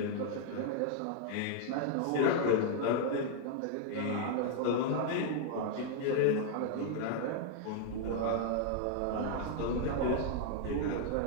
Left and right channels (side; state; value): both; different; correlation 0.00